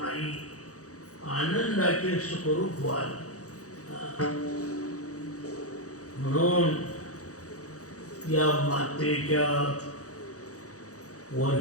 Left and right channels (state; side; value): late; right; 0.66 ms